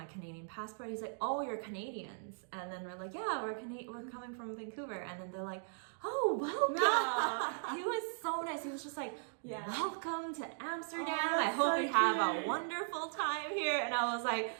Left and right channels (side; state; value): left; silent; digital silence